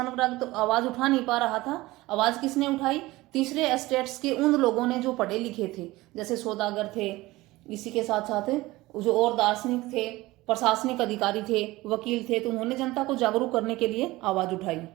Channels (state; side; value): quieter; left; 19.3 dB